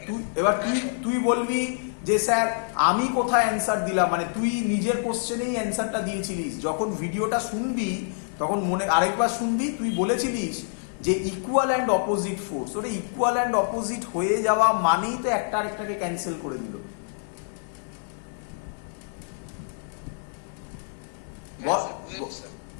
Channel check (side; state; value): right; silent; digital silence